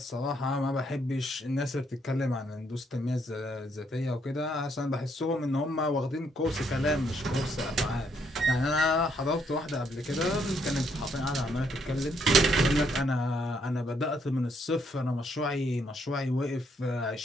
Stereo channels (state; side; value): normal; both; correlation 0.72